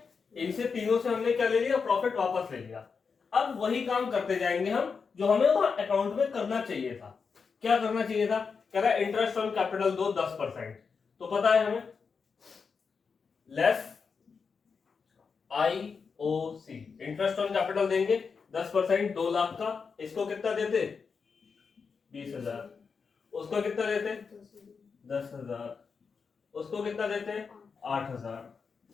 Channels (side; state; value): right; quieter; 5.5 dB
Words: इनसे तीनों से हमने क्या ले लिया, प्रॉफिट वापस ले लिया। अब वही काम करते जाएंगे हम जो हमें वहां अकाउंट में करना चाहिए था। क्या करना चाहिए था, कह रहा है इंटरेस्ट ऑन कैपिटल दो 10%। तो पता है हमें, less IOC, interest on capital देंगे 10%, 2,00,000 का। इसको कितना देते, 20,000। उसको कितना देते, 10,000। उसको कितना देते, 8,000।